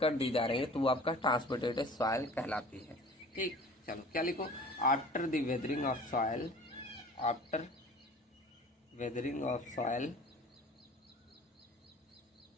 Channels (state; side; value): normal; both; correlation 0.44